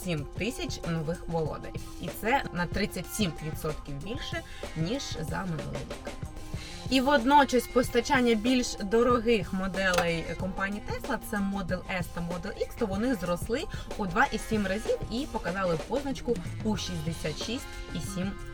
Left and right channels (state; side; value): identical; both; correlation 1.00